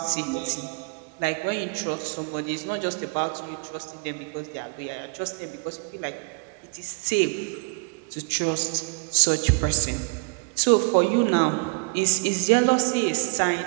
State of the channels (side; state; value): left; quieter; 35.8 dB